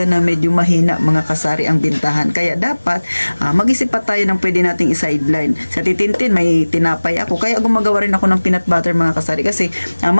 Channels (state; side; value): inverted; both; correlation -1.00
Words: na medyo mahina mga kasari ang bintahan. Kaya dapat mag-isip pa tayo ng pwede nating i-sideline. Sa titintin may tinapay ako. Kaya gumagawa rin ako ng peanut butter mga kasari kasi